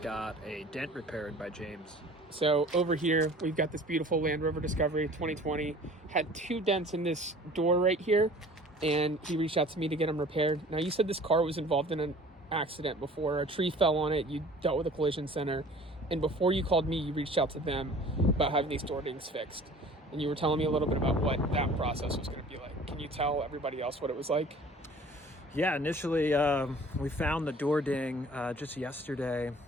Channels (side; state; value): both; normal; correlation 0.47